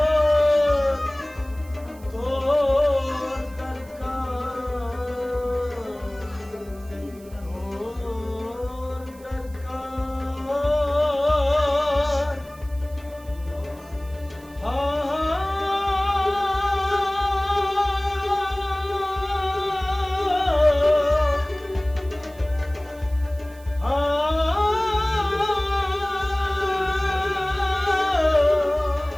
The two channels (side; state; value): right; noise; hiss, 25 dB below the sound